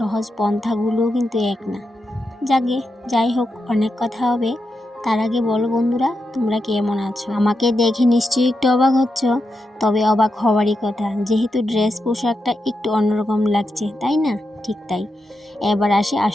পন্থাগুলোও কিন্তু এক না। যাই হোক, অনেক কথা হবে। তার আগে বলো বন্ধুরা, তোমরা কেমন আছো? আমাকে দেখে নিশ্চয়ই একটু অবাক হচ্ছ, তবে অবাক হওয়ারই কথা, যেহেতু ড্রেস পোশাকটা একটু অন্যরকম লাগছে, তাই না? ঠিক তাই। এবার আসি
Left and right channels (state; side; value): normal; both; correlation 0.87